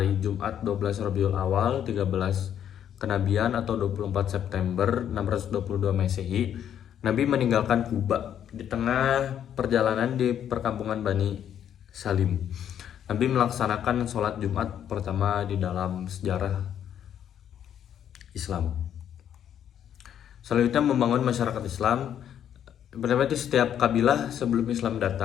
Jumat 12 Rabiul Awal 13 kenabian atau 24 September 622 Masehi, Nabi meninggalkan Kuba di tengah perjalanan di perkampungan Bani Salim. Nabi melaksanakan sholat Jumat pertama di dalam sejarah Islam. Selanjutnya membangun masyarakat Islam. Berarti setiap kabilah sebelum Islam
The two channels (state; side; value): quieter; right; 9.7 dB